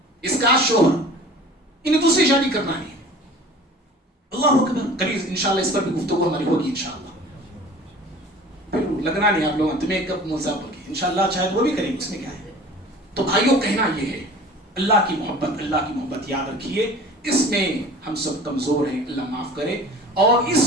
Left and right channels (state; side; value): normal; both; correlation 0.43